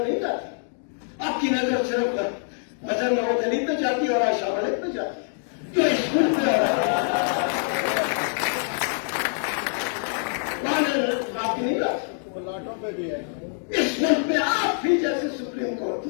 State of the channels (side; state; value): right; silent; 62 dB below the other